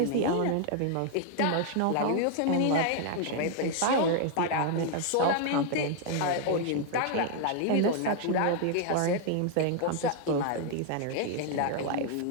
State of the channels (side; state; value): both; different; correlation 0.00